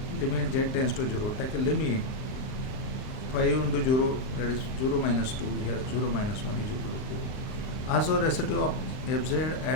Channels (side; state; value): right; late; 38 ms